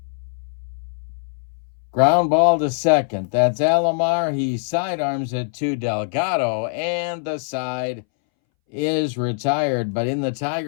ground ball to second. That's Alomar. He sidearms it to Delgado, and the side is retired. But in the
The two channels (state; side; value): silent; right; 63 dB below the other